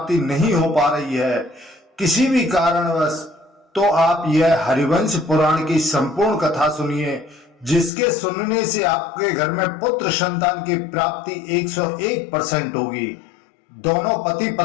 नहीं हो पा रही है किसी भी कारणवश, तो आप यह हरिवंश पुराण की संपूर्ण कथा सुनिए, जिसके सुनने से आपके घर में पुत्र संतान की प्राप्ति 101% होगी। दोनों पति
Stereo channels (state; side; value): drops out; right; at 7.9 s